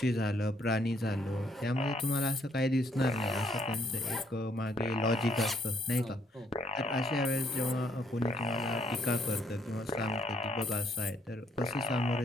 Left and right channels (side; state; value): both; normal; correlation 0.69